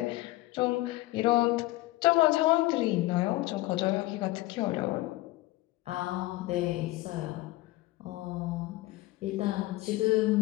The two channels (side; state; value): right; quieter; 18.2 dB